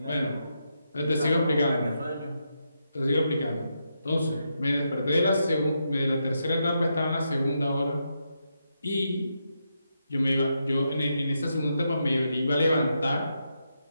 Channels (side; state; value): both; inverted; correlation -0.82